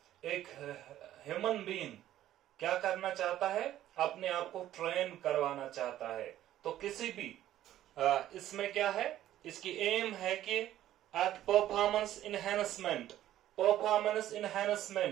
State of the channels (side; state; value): left; quieter; 12.9 dB